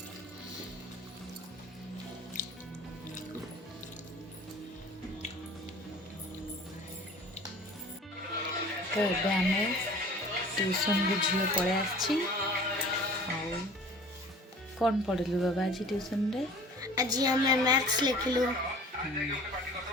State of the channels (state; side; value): normal; both; correlation 0.45